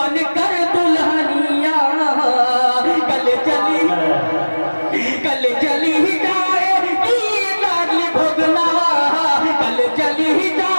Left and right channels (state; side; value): inverted; both; correlation -1.00